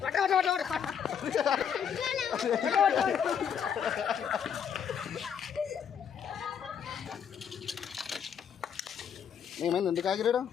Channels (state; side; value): quieter; right; 7.9 dB